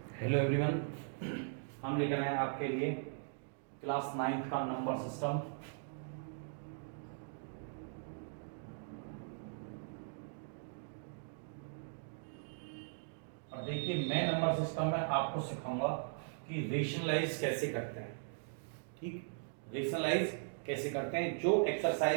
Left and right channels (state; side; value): silent; left; digital silence